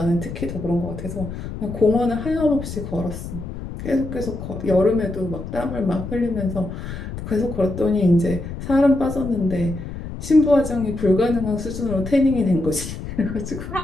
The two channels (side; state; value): left; noise; rumble, 9 dB below the sound